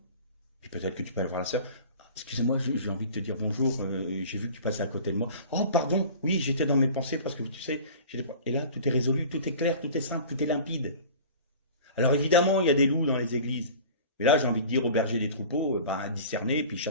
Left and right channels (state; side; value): inverted; both; correlation -0.41